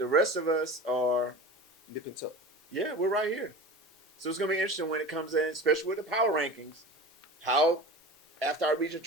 rest of us are, Nip and tuck. yeah, we're right here. So it's going to be interesting when it comes in, especially with the power rankings, how, after our region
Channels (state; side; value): normal; both; correlation 0.34